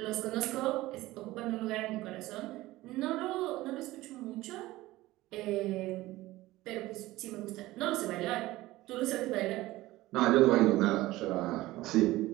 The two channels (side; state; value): left; quieter; 17.8 dB